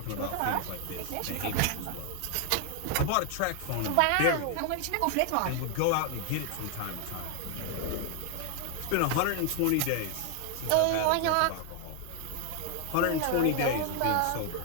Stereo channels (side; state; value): both; different; correlation 0.00